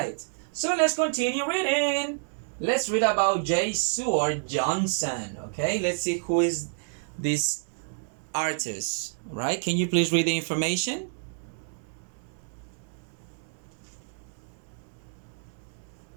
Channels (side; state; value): left; silent; digital silence